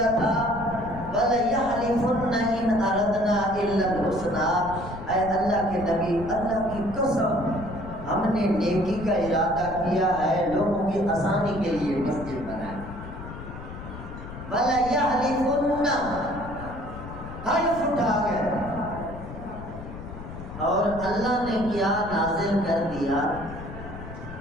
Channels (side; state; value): left; noise; rumble, 11 dB below the sound